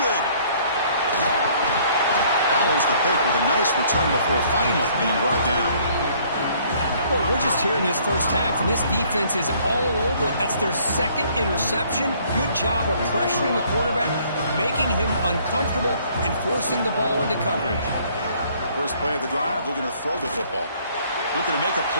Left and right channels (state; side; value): inverted; both; correlation -0.60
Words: Follows the pick with a nice return before finally being brought down. Boy, we're just here in this first half, and this defense is all over it. That's their second interception. Good job of pressuring the quarterback, making him uncomfortable, and forcing the ball into coverage. First play of the drive, looking to throw the football. Looking to make a